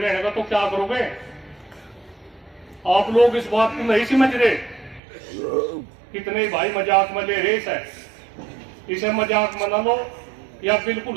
तो क्या करोगे? आप लोग इस बात को नहीं समझ रहे। कितने भाई मजाक में ले रेस है, इसे मजाक मना लो या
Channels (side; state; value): left; drops out; at 5.0 s